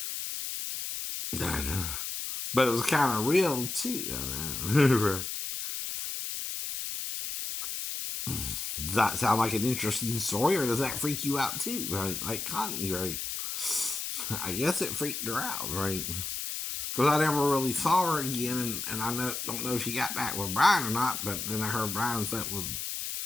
I know. But it was kind of real, too. I know. Right. Does that sound like an interesting story, or does that freak you out, too? Right? Like Connie, right? I guess it freaked her out, right? Because I never really saw her again, and I don't know if she got back with Brian or not, but then I heard Brian slept with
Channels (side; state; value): left; noise; hiss, 4 dB below the sound